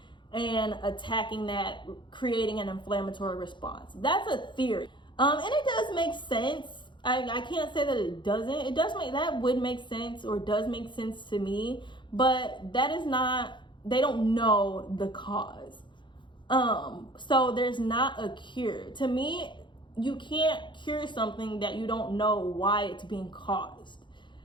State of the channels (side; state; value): right; late; 0.23 ms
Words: and attacking that, creating an inflammatory response. That's a theory. And it does make sense. I can't say that it doesn't. That would make sense, or does make sense to me, but that is not, they don't know the cause. So there's not a cure. To me, you can't cure something that you don't know why it's being caused.